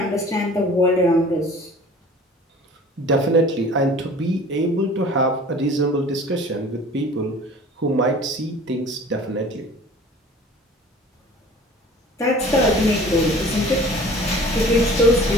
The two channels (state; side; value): normal; both; correlation 0.46